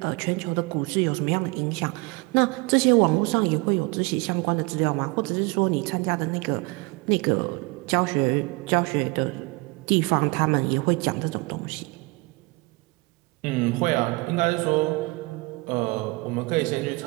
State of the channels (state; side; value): quieter; left; 26.1 dB